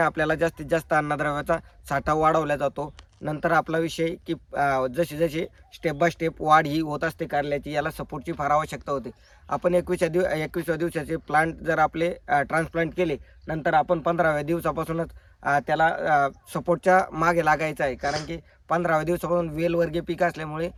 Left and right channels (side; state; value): both; identical; correlation 1.00